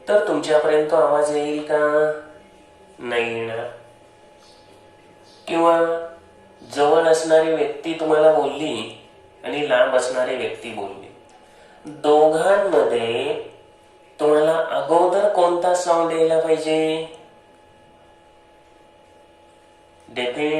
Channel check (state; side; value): identical; both; correlation 1.00